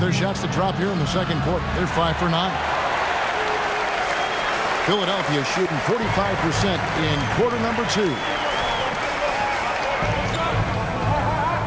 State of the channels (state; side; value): identical; both; correlation 1.00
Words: their shots to drop here in the second quarter. They're 5 for 9. Philadelphia shooting 45% in quarter number 2.